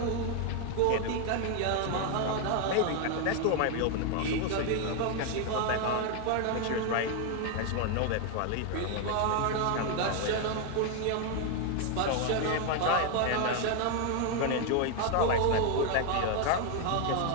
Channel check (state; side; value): different; both; correlation 0.01